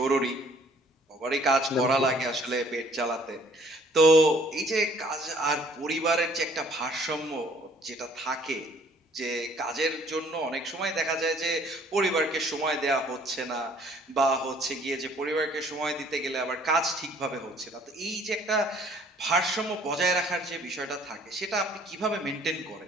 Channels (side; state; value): both; normal; correlation 0.59